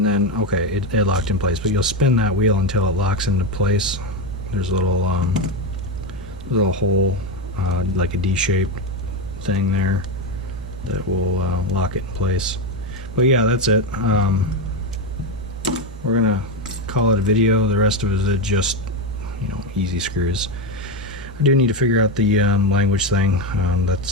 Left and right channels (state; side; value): normal; both; correlation 0.11